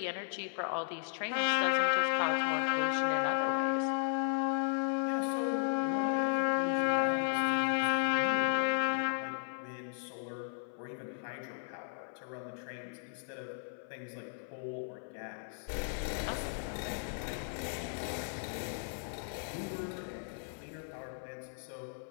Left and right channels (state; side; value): silent; right; 54 dB below the other